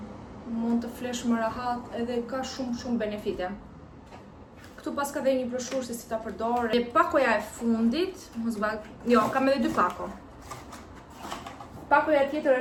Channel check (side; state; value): both; identical; correlation 1.00